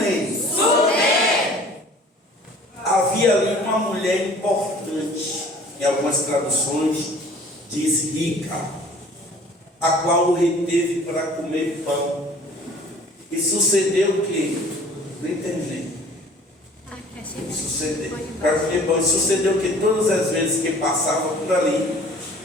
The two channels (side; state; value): both; normal; correlation 0.49